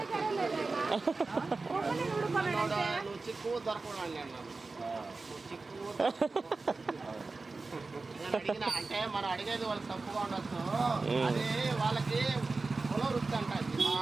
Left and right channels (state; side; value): quieter; left; 3.8 dB